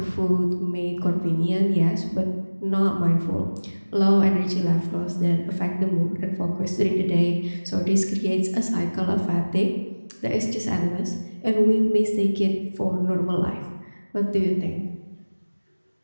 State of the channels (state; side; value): inverted; both; correlation -1.00